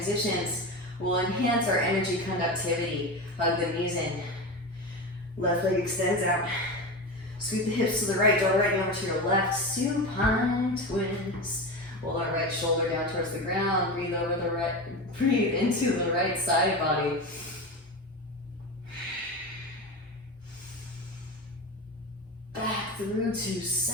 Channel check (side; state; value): both; normal; correlation 0.23